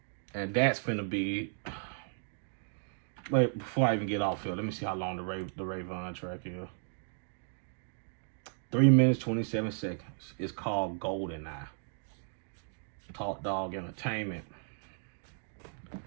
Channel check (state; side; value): silent; left; digital silence